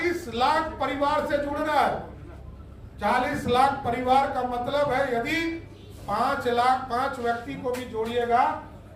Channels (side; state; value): both; identical; correlation 1.00